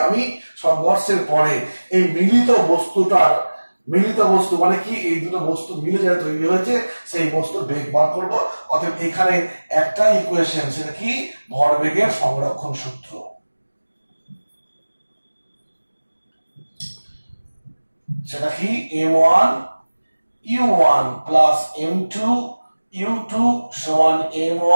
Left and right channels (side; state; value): both; inverted; correlation -1.00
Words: আমি সংঘর্ষের পরে এই মিলিত বস্তু মানে কি, এই দুটো বস্তু মিলে যেটা তৈরি হয়েছে সেই বস্তুর বেগ বার করবো। অতএব এখানে একটা ইকুয়েশন, সেটা কি, ভরবেগের সংরক্ষণ সূত্র। সেটা কি, M1 U1 plus M2 U2 সমান